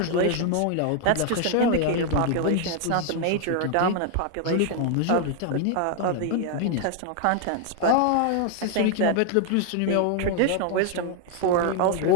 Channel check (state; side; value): different; both; correlation 0.00